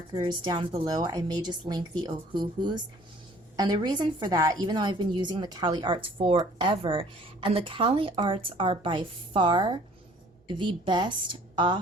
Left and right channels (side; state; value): both; normal; correlation 0.54